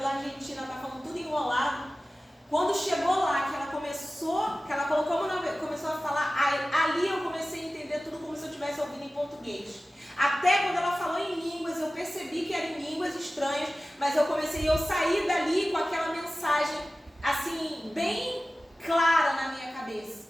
Argentina. Ela está falando tudo enrolado. Quando chegou lá, que ela colocou a mão começou a falar, ali eu comecei a entender tudo como se eu estivesse ouvindo em português. Até quando ela falou em línguas, eu percebi que eram línguas estranhas, mas eu saí dali com aquela mensagem, assim, bem clara na minha cabeça.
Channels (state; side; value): normal; both; correlation 0.96